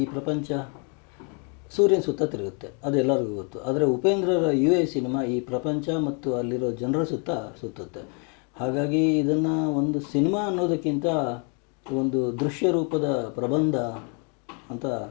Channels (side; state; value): right; quieter; 37.8 dB